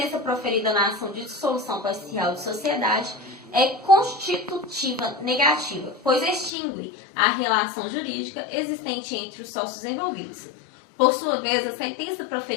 proferida na ação de dissolução parcial de sociedade é constitutiva negativa, pois extingue a relação jurídica existente entre os sócios envolvidos. Por sua vez, a sentença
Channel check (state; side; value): drops out; right; at 6.5 s